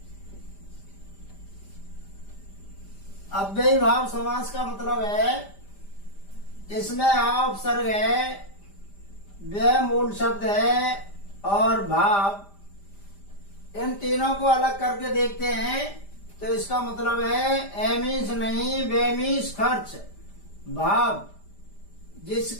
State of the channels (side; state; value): right; late; 5.0 ms